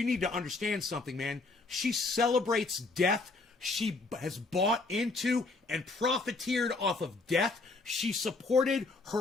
need to understand something, man. She celebrates death. She has bought into and profiteered off of death. She supported her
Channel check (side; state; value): right; quieter; 3.6 dB